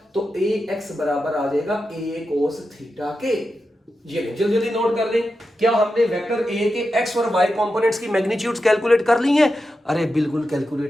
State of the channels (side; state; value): both; normal; correlation 0.89